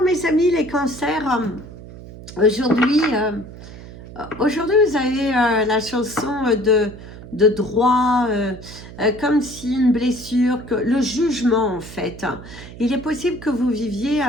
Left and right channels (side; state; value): right; noise; hum, 15 dB below the sound